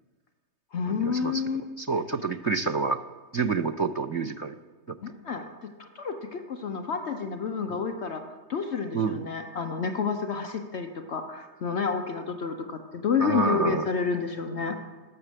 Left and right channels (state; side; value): late; right; 3.2 ms